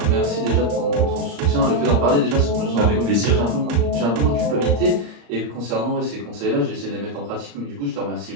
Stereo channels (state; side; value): late; left; 34 ms